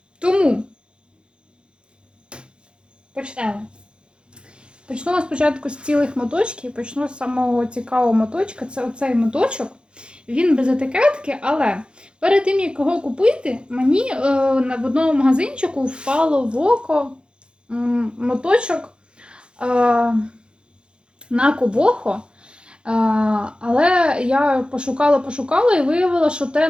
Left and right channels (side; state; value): left; late; 0.053 ms